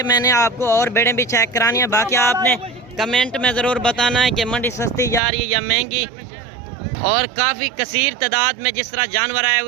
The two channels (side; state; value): left; drops out; at 5.2 s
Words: میں نے آپ کو اور بیڑیں بھی چیک کرانی ہے. باقی آپ نے کمنٹ میں ضرور بتانا ہے کہ منڈی سستی جا رہی ہے یا مہنگی. اور کافی کثیر تعداد میں جس طرح جانور آئے